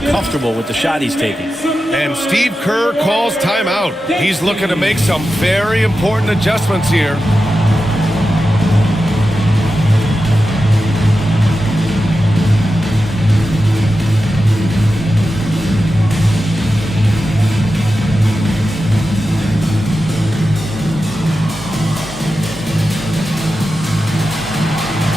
comfortable with the shot he's taking. And Steve Kerr calls timeout. He's looking to make some very important adjustments here.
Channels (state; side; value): normal; both; correlation 0.91